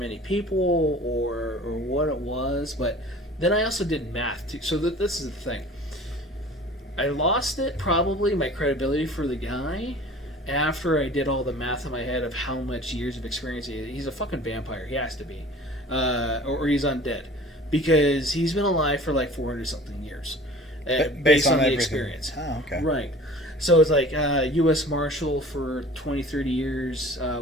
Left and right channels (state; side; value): normal; both; correlation 0.44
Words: people or what it was. But then I also did math too. So this is the thing. I lost it, probably, my credibility for the guy, after I did all the math in my head of how much years of experience he is. He's a fucking vampire. He has to be. Or he's undead. Because he's been alive for like 400-something years. Based on the everything. experience. Oh, okay. Right. So it's like U.S. Marshal for 20, 30 years,